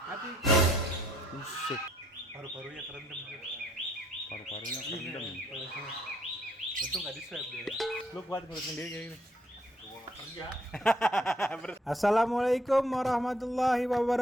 Mati. musik, Paru-parunya kerendam tuh. paru-parunya kerendam. Untung nggak di swab dia. Lu kuat ngurus sendiri kayak gini. Gua nggak kerja. Assalamualaikum warahmatullahi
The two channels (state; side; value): normal; both; correlation 0.68